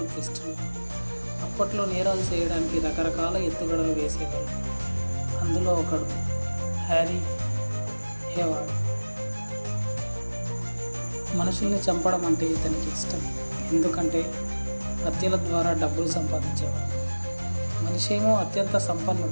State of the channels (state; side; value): inverted; both; correlation -1.00